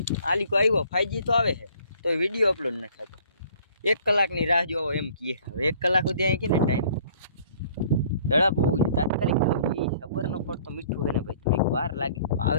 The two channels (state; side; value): inverted; both; correlation -0.56